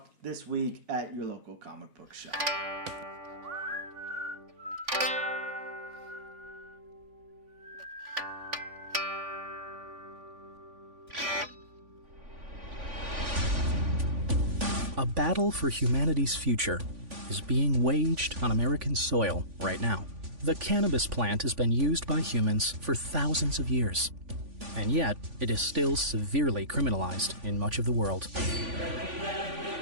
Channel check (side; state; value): left; late; 3.5 ms